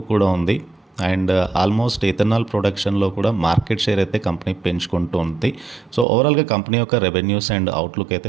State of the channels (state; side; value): drops out; left; at 6.1 s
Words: కూడా ఉంది. అండ్ ఆల్మోస్ట్ ఇథనాల్ ప్రొడక్షన్లో కూడా మార్కెట్ షేర్ అయితే కంపెనీ పెంచుకుంటూ ఉంది. సో ఓవరాల్గా కంపెనీ యొక్క రెవెన్యూస్ అండ్ అవుట్లుక్ అయితే